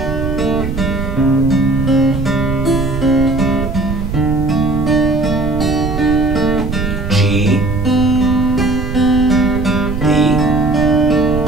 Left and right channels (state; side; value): noise; right; rumble, 5 dB below the sound